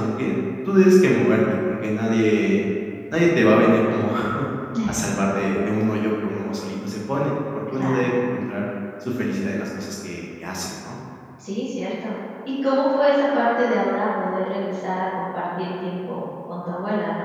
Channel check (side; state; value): both; identical; correlation 1.00